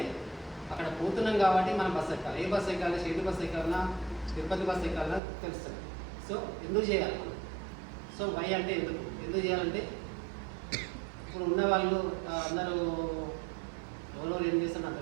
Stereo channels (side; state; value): left; drops out; at 5.2 s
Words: అక్కడ పోతున్నాం కాబట్టి మనం బస్సు ఎక్కాలి. ఏ బస్సు ఎక్కాలి, షిరిడి బస్సు ఎక్కాలన్నా, తిరుపతి బస్సు ఎక్కాలన్నా తెలుస్తుంది. సో ఎందుకు చేయాలి మనం? సో వై అంటే ఎందుకు చేయాలంటే ఇప్పుడు ఉన్న వాళ్ళు అందరూ ఎవరో ఏం చేస్తారో నాకు